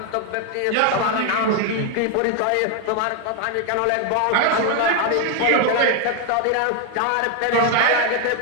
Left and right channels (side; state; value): both; different; correlation 0.01